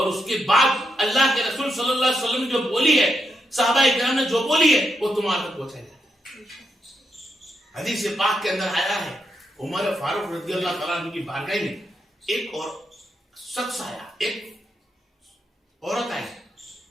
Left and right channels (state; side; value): normal; both; correlation 0.83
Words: اس کے بعد اللہ کے رسول صلی اللہ علیہ وسلم نے جو بولی ہے، صحابہ اکرام نے جو بولی ہے، وہ تمہارے تک پہنچائی جاتی ہے. حدیث پاک کے اندر آیا ہے عمر فاروق رضی اللہ تعالیٰ عنہ کی بارگاہ میں ایک اور شخص آیا، ایک عورت آئی.